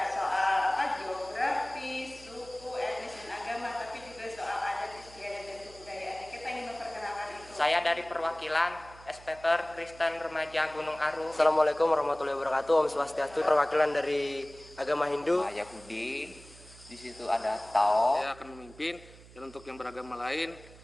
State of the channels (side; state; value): right; noise; hum, 21 dB below the sound